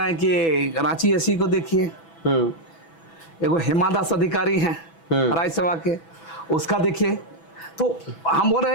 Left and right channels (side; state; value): right; late; 6.1 ms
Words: हैं कि रांची एससी को देखिए, एगो हेमा दास अधिकारी हैं राज्य सेवा के, उसका देखिए। तो हम बोल रहे